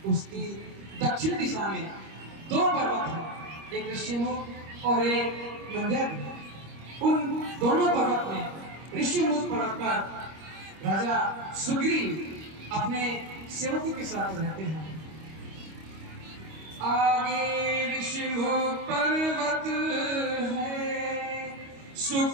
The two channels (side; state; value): left; late; 25 ms